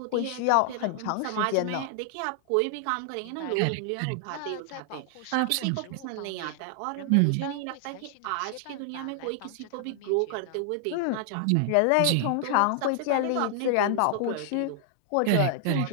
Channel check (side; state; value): both; different; correlation 0.00